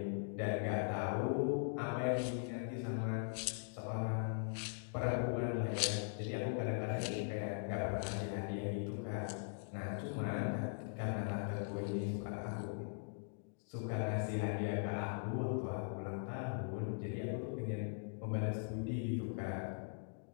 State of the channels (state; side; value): silent; right; digital silence